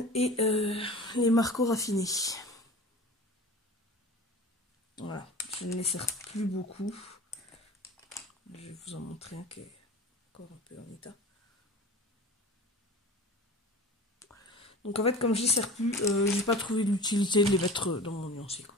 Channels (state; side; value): normal; both; correlation 0.37